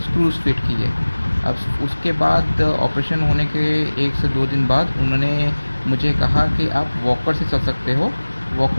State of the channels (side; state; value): both; inverted; correlation -1.00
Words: स्क्रूज फिट किए। अब उसके बाद ऑपरेशन होने के 1 से 2 दिन बाद उन्होंने मुझे कहा कि आप वॉकर से चल सकते हो,